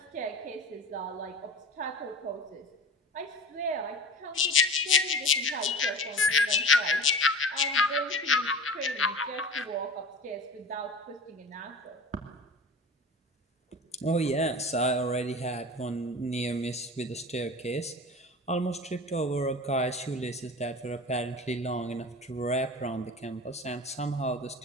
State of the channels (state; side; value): normal; both; correlation 0.35